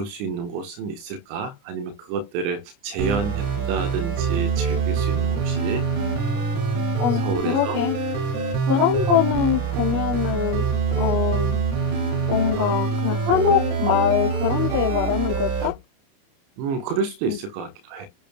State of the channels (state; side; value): late; left; 30 ms